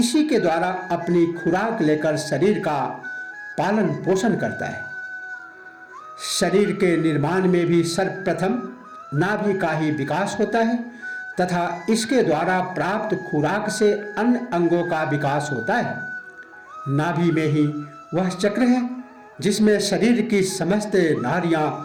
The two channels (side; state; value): both; identical; correlation 1.00